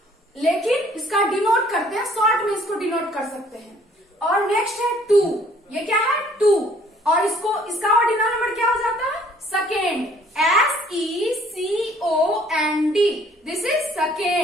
लेकिन इसका डिनोट करते हैं, शॉर्ट में इसको डिनोट कर सकते हैं. और नेक्स्ट है 2. ये क्या है? 2. और इसका ऑर्डिनल नंबर क्या हो जाता है? Second. SECOND. This is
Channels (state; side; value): normal; both; correlation 0.59